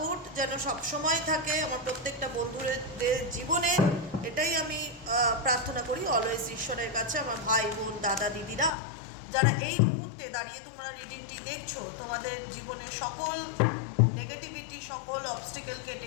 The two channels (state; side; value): drops out; right; at 8.7 s